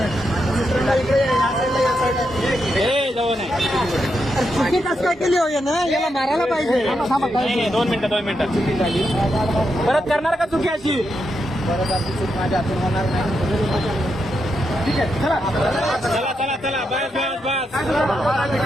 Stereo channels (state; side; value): normal; both; correlation 0.83